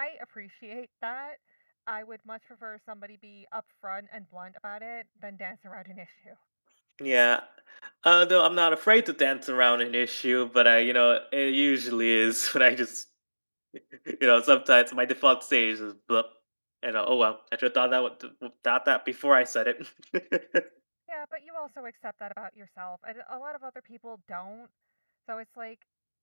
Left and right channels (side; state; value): both; inverted; correlation -1.00